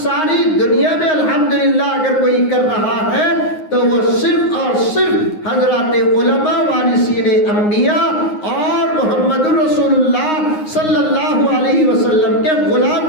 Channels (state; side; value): late; right; 9.6 ms